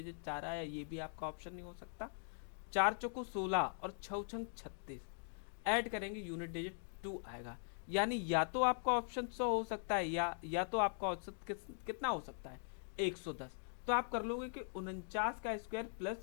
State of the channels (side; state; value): right; silent; digital silence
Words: 4 आया, ये भी आपका ऑप्शन नहीं हो सकता। 4 चौको 16 और 6 छंग 36, ऐड करेंगे यूनिट डिजिट 2 आएगा, यानी या तो आपका ऑप्शन 100 हो सकता है, या तो आपका औसत कितना हो सकता है 110। तो आप कर लोगे कि 49 का स्क्वायर